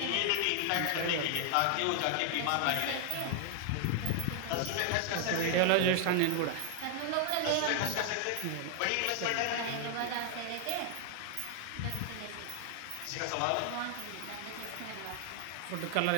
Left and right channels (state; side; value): different; both; correlation 0.00